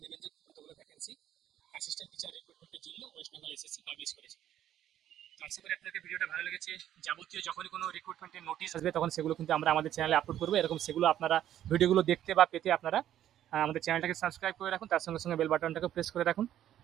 নেবেন যে কতগুলো ভ্যাকেন্সি অ্যাসিস্ট্যান্ট টিচার রিক্রুটমেন্টের জন্য ওয়েস্ট বেঙ্গল SSC পাবলিশ করেছে। তো আশা করি আপনাদের ভিডিওটা ভালো লেগেছে। যাবতীয় যখনই কোনো রিক্রুটমেন্টের নোটিশ আসবে তখন সেগুলো কিন্তু আমরা আমাদের চ্যানেলে আপলোড করবো। এরকম সেগুলো আপনারা ভিডিওগুলো দেখতে বা পেতে আপনারা আমাদের চ্যানেলটাকে সাবস্ক্রাইব করে রাখুন, তার সঙ্গে সঙ্গে বেল বাটনটাকে প্রেস করে রাখুন।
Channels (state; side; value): quieter; left; 11.5 dB